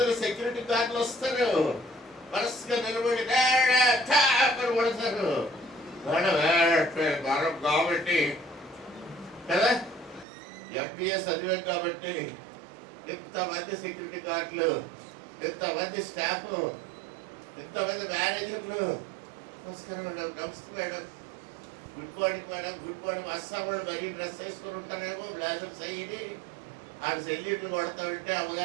సెక్యూరిటీ గార్డులు వస్తారు, వరుసగా నిలబడి పడతారు. మనం కాబట్టి కదా, ఎంబీఎస్ చదివాం కాబట్టి ఇంతమంది సెక్యూరిటీ గార్డులు, ఇంతమంది స్టాఫ్, ఇంతమంది మేనేజర్లు. నమస్కారం మేడం, నమస్తే madam, good morning madam, good morning. Assam వాళ్ళు మరీ డ్రెస్ వేసుకొని ఉంటారేమో, బ్లాజర్స్ అయ్యి ఆడు సెల్యూట్లు కొడతా ఉంటే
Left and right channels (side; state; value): left; drops out; at 10.2 s